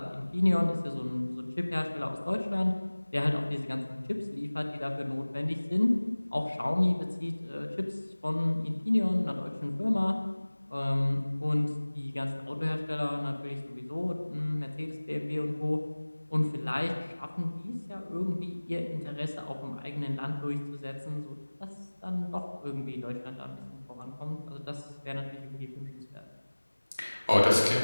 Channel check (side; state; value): both; inverted; correlation -1.00